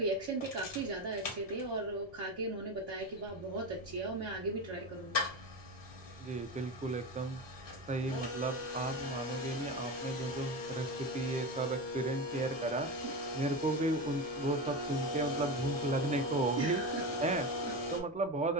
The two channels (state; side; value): noise; left; rumble, 24 dB below the sound